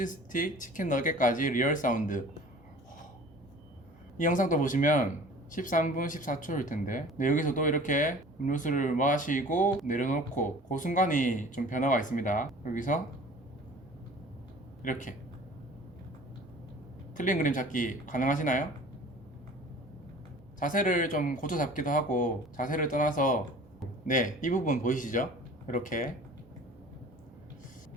스틱, 치킨 너겟까지 리얼 사운드. 이 영상도 보시면 13분 14초일 텐데 여기서도 이렇게 음료수를 마시고 내려놓고 그 순간이 좀 변화가 있습니다. 여기서 이렇게 틀린 그림 찾기 가능하시나요? 자세를 좀 고쳐 잡기도 하고 자세를 떠나서 네, 이 부분 보이시죠? 이렇게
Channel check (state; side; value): normal; both; correlation 0.45